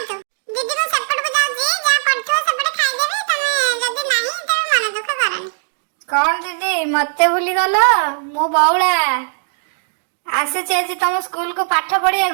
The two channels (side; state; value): left; silent; digital silence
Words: ତୁ। ଦିଦି ମୁଁ ସେପଟକୁ ଯାଉଛି, ଯାହା ପଡିଥିବ ସେପଟେ ଖାଇଦେବି। ତମେ ଯଦି ନାହିଁ ତେବେ ମନ ଦୁଃଖ କରନି। କଣ ଦିଦି ମତେ ଭୁଲିଗଲ? ମୁଁ ବଉଳା ଆସିଛି ଆଜି ତମ ସ୍କୁଲକୁ ପାଠ